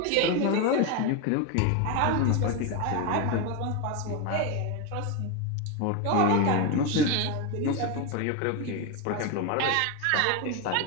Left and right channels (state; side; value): different; both; correlation 0.02